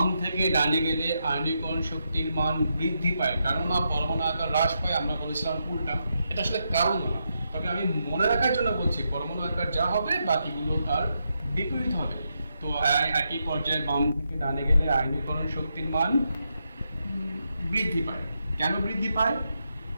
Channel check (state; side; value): inverted; both; correlation -0.83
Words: থেকে ডানে গেলে আয়নীকরণ শক্তির মান বৃদ্ধি পায়, কারণ পরমাণু আকার হ্রাস পায়। আমরা বলেছিলাম উল্টা, এটা আসলে কারণ না, তবে আমি মনে রাখার জন্য বলছি পরমাণু আকার যা হবে বাকিগুলো তার বিপরীত হবে। তো একই পর্যায়ে বাম থেকে ডানে গেলে আয়নীকরণ শক্তির মান বৃদ্ধি পায়। কেন বৃদ্ধি পায়?